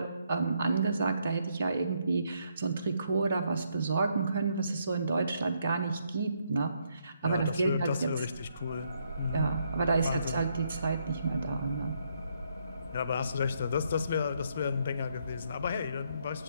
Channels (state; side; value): inverted; both; correlation -0.74